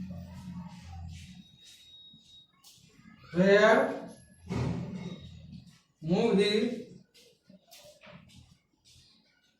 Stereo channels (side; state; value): both; identical; correlation 1.00